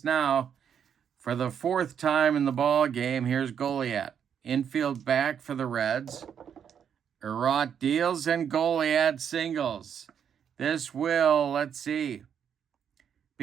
now for the 4th time in the ball game. Here's Goliath. Infield back for the Reds. Erot deals and Goliath singles. This will, let's see,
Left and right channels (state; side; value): quieter; left; 8.1 dB